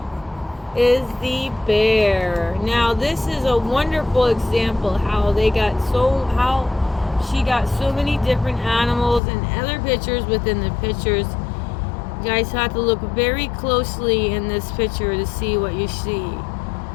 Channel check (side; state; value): right; drops out; at 9.2 s